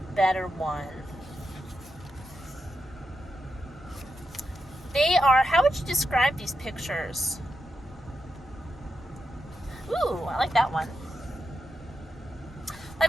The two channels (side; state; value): both; normal; correlation 0.87